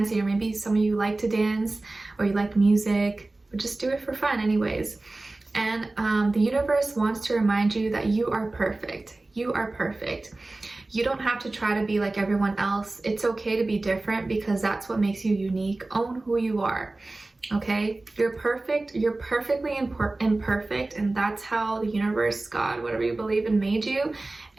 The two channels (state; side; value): quieter; left; 3.0 dB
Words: Or maybe some of you like to dance or you like music, but just do it for fun anyways. And the universe wants to remind you that you are perfect. You are perfect. You don't have to try to be like everyone else. It's okay to be different because that's what makes you unique. Own who you are, okay? You're perfect. You're perfectly imperfect, and that's how the universe, God, whatever you believe in, made you.